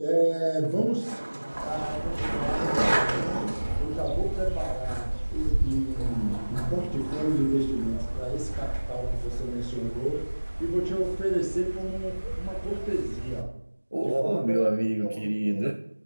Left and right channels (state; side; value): inverted; both; correlation -1.00